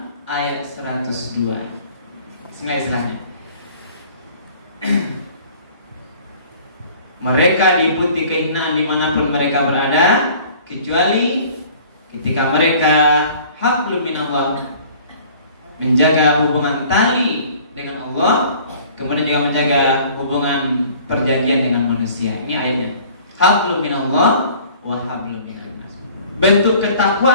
ayat 102. Istilahnya mereka diikuti kehinaan dimanapun mereka berada, kecuali ketika mereka hablum minallah, menjaga hubungan tali dengan Allah, kemudian juga menjaga hubungan perjanjian dengan manusia. Ini ayatnya, hablum minallah wa hablum minnas. Bentuk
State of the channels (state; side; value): inverted; both; correlation -0.50